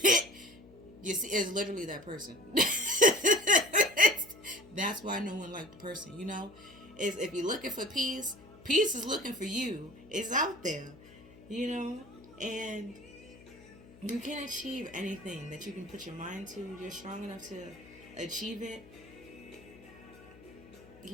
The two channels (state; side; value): noise; left; hum, 22 dB below the sound